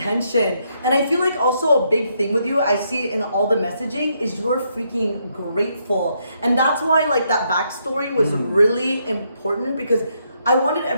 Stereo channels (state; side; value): inverted; both; correlation -0.76